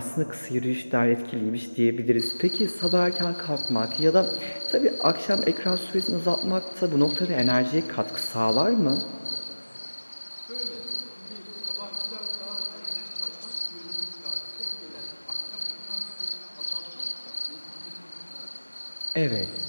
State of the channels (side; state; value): both; inverted; correlation -1.00